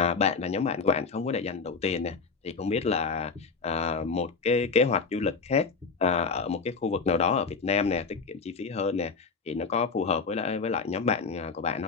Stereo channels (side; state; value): right; quieter; 4.8 dB